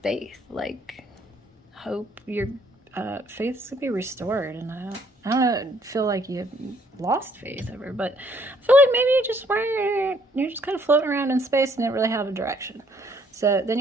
faith. Like, hope your faith's going to be restored. And I don't feel like you've lost faith ever, but I feel like maybe you're just kind of floating around in space and didn't really have a direction. So then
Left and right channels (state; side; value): normal; both; correlation 0.65